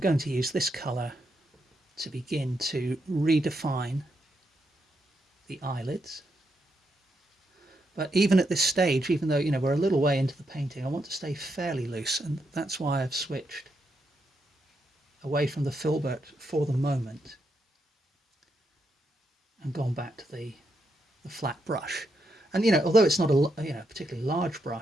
to use this colour to begin to redefine the eyelids. But even at this stage, even though we're a little way into the painting, I want to stay fairly loose, and that's why I've switched away from the filbert for the moment and gone back to the flat brush. And although it's not a particularly large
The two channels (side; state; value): both; normal; correlation 0.81